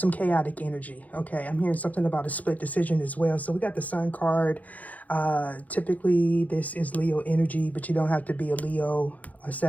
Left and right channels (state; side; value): late; right; 0.076 ms